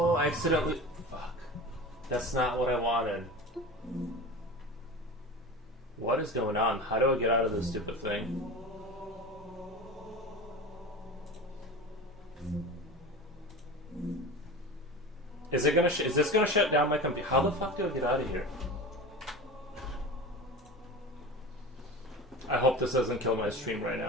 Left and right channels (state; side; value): normal; both; correlation 0.31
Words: I accidentally... Fuck. That's not what I wanted. What is going on? How do I get out of this stupid thing? Is this gonna shut down my computer? How the fuck do I get out of here? I hope this doesn't kill my stream right